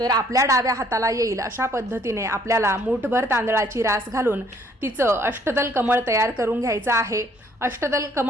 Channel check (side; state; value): both; normal; correlation 0.63